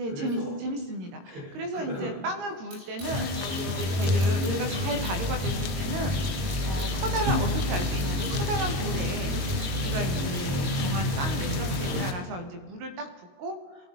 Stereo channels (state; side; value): late; left; 22 ms